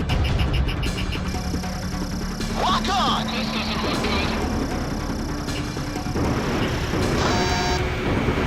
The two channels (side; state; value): both; identical; correlation 1.00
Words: Lock on! This doesn't look good.